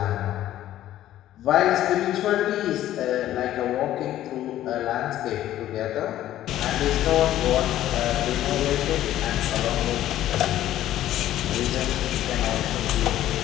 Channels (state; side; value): quieter; right; 13.1 dB